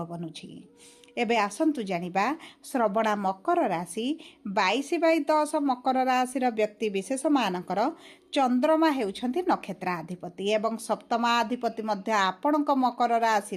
बनुची। एबे आसंतु जानिबा श्रवणा मकर राशि 22/10 मकर राशि व्यक्ति विशेष मानकर चंद्रमा हेउछंती नक्षत्राधिपति एवं सप्तमाधिपति मध्य आपणक मकर राशि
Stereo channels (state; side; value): identical; both; correlation 1.00